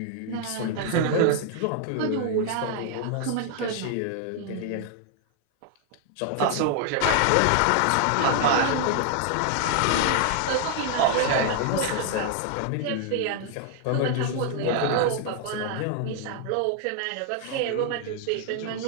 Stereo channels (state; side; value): different; both; correlation 0.00